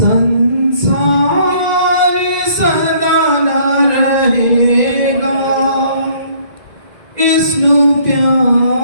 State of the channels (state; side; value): late; left; 1.9 ms